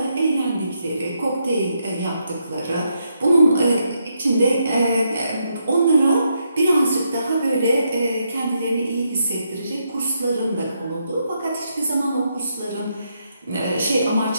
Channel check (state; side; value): inverted; both; correlation -0.79